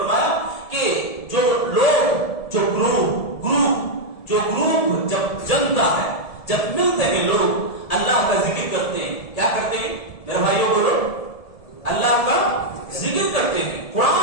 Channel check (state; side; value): late; right; 1.7 ms